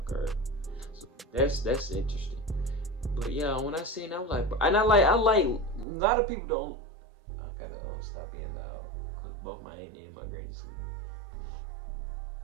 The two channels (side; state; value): left; drops out; at 5.9 s